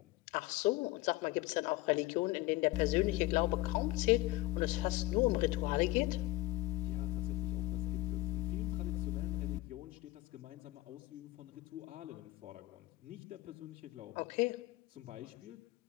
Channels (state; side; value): quieter; right; 19.3 dB